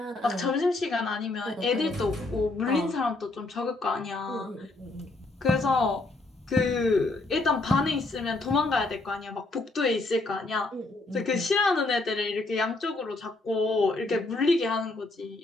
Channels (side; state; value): right; quieter; 3.1 dB